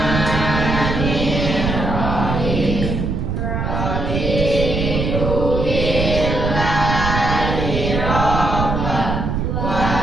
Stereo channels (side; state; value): right; noise; rumble, 1 dB below the sound